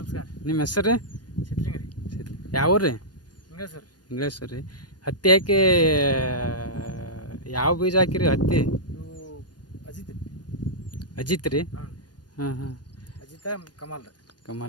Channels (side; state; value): right; late; 0.69 ms